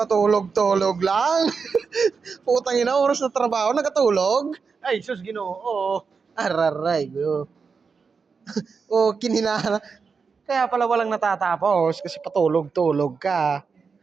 lang. Putang ina, oras na trabaho, nagatulog. Ay, sus Ginoo. Araray, go. Oh, kinina. Kaya pala walang natatapos kasi patulog-tulog ka.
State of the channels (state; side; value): quieter; left; 5.3 dB